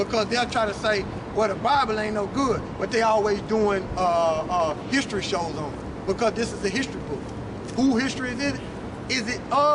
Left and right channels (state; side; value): identical; both; correlation 1.00